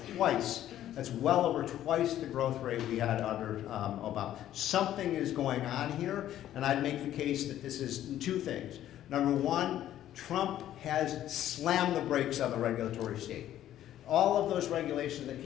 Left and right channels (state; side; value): quieter; right; 12.2 dB